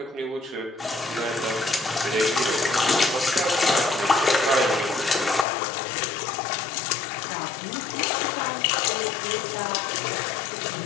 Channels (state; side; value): drops out; right; at 5.5 s